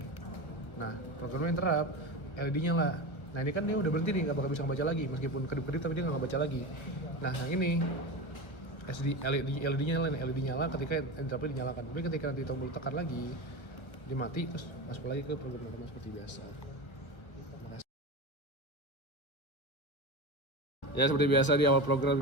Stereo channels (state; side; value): late; right; 1.2 ms